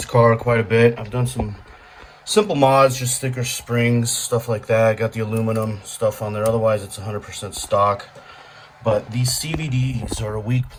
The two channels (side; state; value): both; identical; correlation 1.00